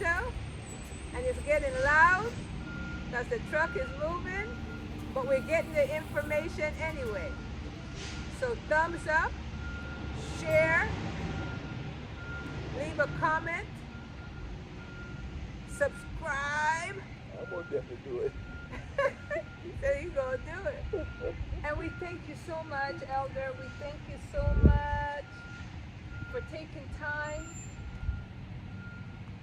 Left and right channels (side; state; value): both; identical; correlation 1.00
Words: and it's getting loud because the truck is moving, but we're getting the information anyway. So thumbs up, share, leave a comment, subscribe. I'm going to definitely do it. There you go, do it. And we thank you so much, Elder. We thank you so much for taking time